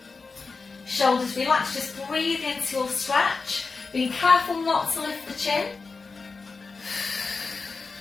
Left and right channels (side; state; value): right; quieter; 4.3 dB